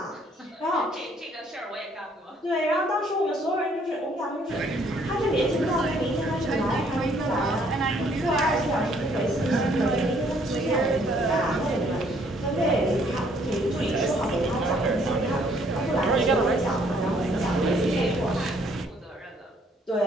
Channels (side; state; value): both; normal; correlation 0.64